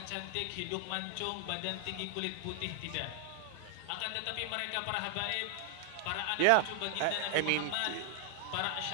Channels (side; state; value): both; different; correlation 0.00